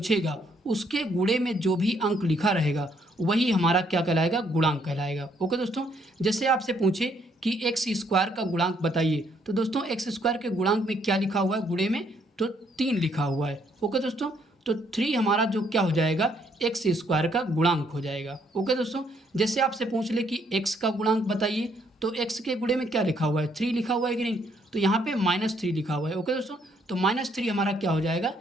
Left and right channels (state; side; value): normal; both; correlation 0.69